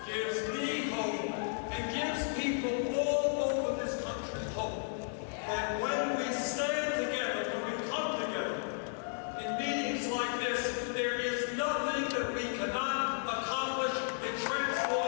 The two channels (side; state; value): right; silent; digital silence